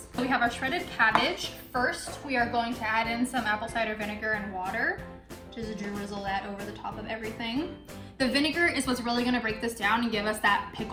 So we have our shredded cabbage. First, we are going to add in some apple cider vinegar and water. Just drizzle that over the top of everything. The vinegar is what's really gonna break this down and give us that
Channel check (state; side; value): identical; both; correlation 1.00